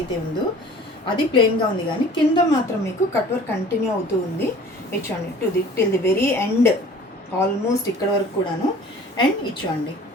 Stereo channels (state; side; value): normal; both; correlation 0.47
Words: ఉందో అది ప్లెయిన్గా ఉంది కానీ కింద మాత్రం మీకు కట్ వర్క్ కంటిన్యూ అవుతూ ఉంది. ఇచ్చోండి till the very end, almost ఇక్కడ వరకు కూడాను. అండ్ ఇచ్చోండి,